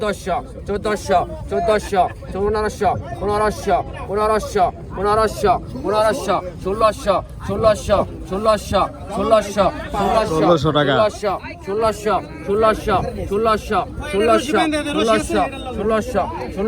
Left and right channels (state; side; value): identical; both; correlation 1.00